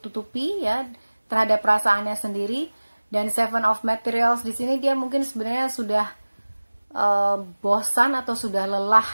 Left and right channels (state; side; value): inverted; both; correlation -1.00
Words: ya terhadap perasaannya sendiri. Dan Seven of Materials di sini dia mungkin sebenarnya sudah bosan atau sudah lelah